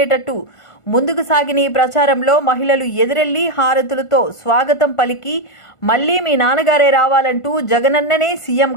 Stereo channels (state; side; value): late; right; 1.4 ms